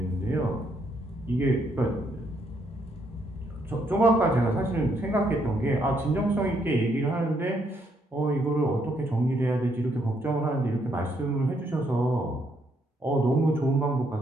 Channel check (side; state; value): both; normal; correlation 0.73